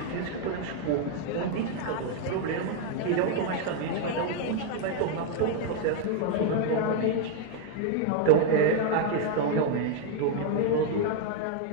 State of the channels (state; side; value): different; both; correlation 0.01